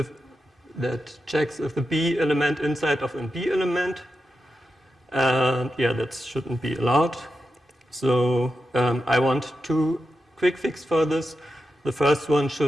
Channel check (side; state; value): both; normal; correlation 0.89